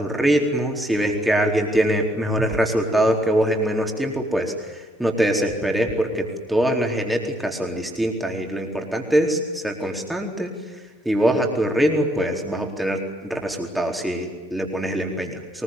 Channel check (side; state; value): both; normal; correlation 0.70